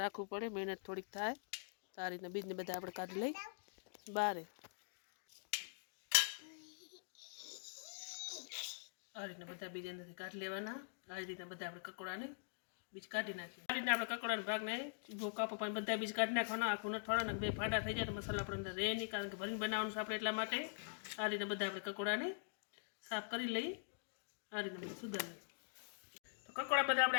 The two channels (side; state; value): right; silent; digital silence